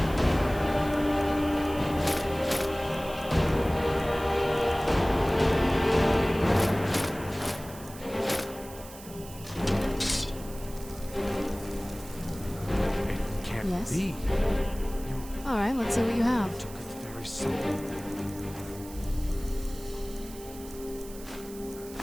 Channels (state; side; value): noise; right; hiss, 17 dB below the sound